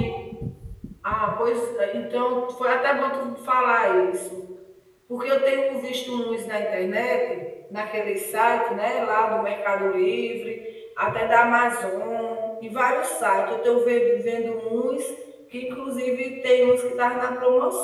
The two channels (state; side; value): identical; both; correlation 1.00